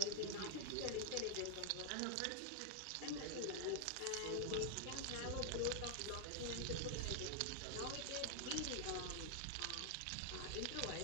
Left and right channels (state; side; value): different; both; correlation 0.00